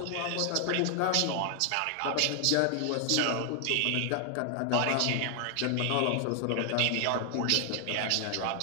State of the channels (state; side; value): different; both; correlation 0.00